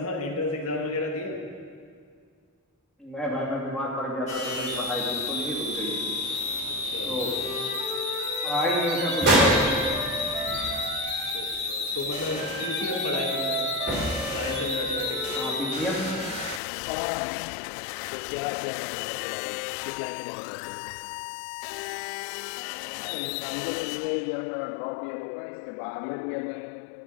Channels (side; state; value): right; drops out; at 16.6 s